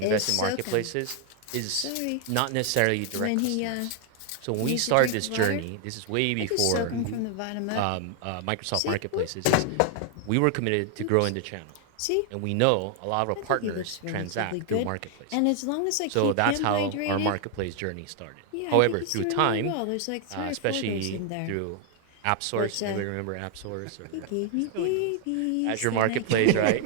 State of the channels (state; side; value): different; both; correlation 0.00